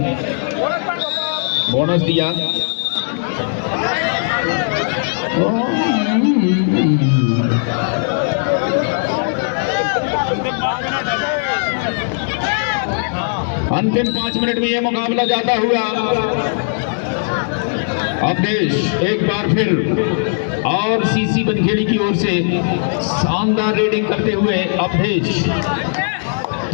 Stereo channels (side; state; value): right; silent; digital silence